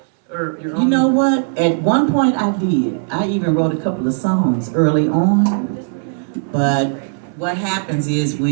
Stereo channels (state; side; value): silent; left; 64 dB below the other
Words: your own? You know what? At one point I did. I even wrote a couple of songs early on. But what happens is